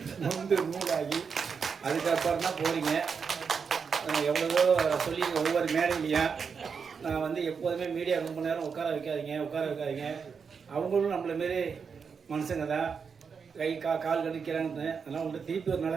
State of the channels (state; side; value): quieter; left; 6.0 dB